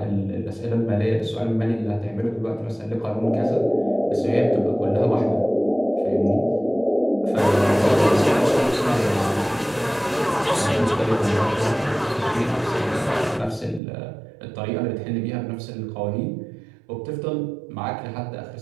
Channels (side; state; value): left; drops out; at 13.8 s